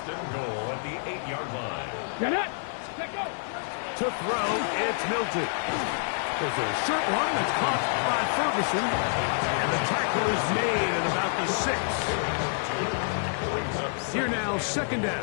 and goal at the 8-yard line. Get it. Let go. To throw, it's Milton. There's a short one that's caught by Ferguson. And the tackle is made at about the 6. Here now, 2nd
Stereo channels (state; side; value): silent; right; 59 dB below the other